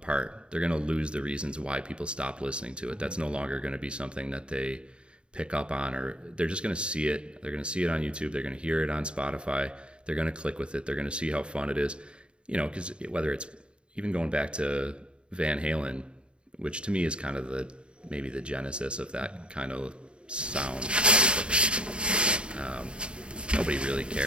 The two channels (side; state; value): left; late; 0.054 ms